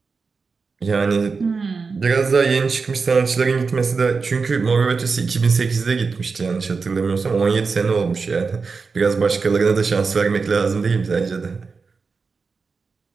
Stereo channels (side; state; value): left; quieter; 4.8 dB